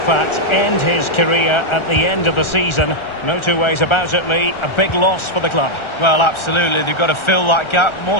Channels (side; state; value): right; late; 1.4 ms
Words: end his career at the end of the season. No two ways about it, Lee. A big loss for the club. Well, absolutely. They've got to fill that gap.